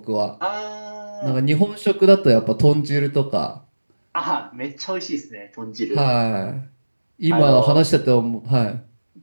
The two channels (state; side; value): inverted; both; correlation -1.00